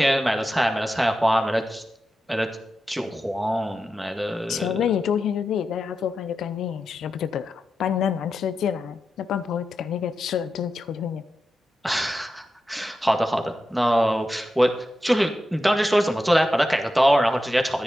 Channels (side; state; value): both; normal; correlation 0.90